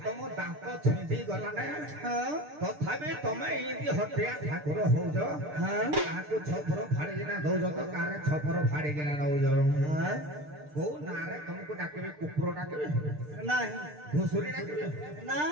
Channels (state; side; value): late; left; 6.7 ms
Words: तुम दांत छिंदी गला ने तथापि तमे एंदी हटिया ठाकुर होज काको छपर फाड़ी किना दौज तो कारे छपर फाड़ी किना नौज को नारे तुमको डाकेबे कुकुर डाकेबे नहीं घुसुरी डाकेबे ना